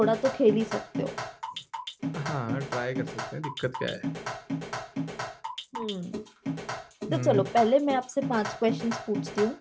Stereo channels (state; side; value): identical; both; correlation 1.00